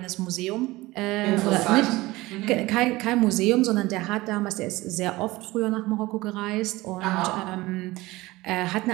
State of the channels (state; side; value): quieter; left; 19.7 dB